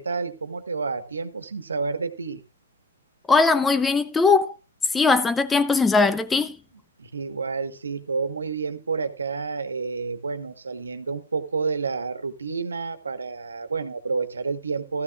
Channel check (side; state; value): both; normal; correlation 0.29